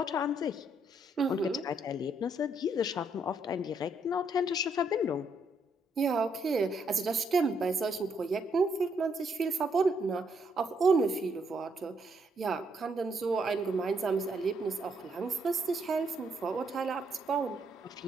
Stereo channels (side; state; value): both; normal; correlation 0.73